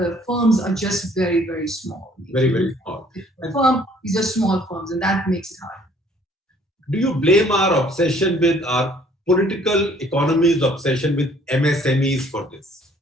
firms are just very, very small. Very, very small. These are small firms, and that makes it hard. Do you blame our obsession with our political economy's obsession with MSMEs for this?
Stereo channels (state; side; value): normal; both; correlation 0.59